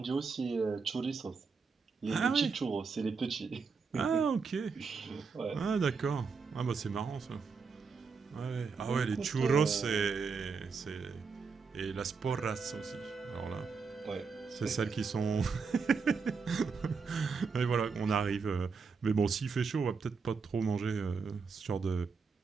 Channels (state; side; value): quieter; left; 5.2 dB